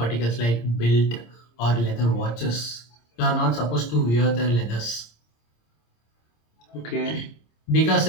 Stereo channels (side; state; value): right; late; 26 ms